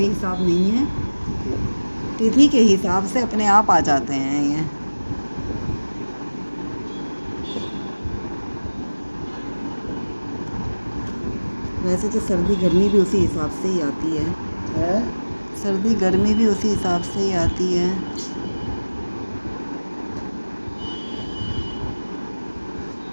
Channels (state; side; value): inverted; both; correlation -1.00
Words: हिसाब नहीं है। तिथि के हिसाब से अपने आप आ जाते हैं ये। वैसे तो सर्दी गर्मी भी उसी हिसाब से ही आती है। हैं? सर्दी गर्मी भी उसी हिसाब से ही आती है।